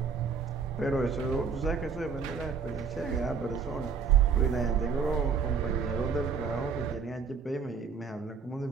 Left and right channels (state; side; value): quieter; left; 5.9 dB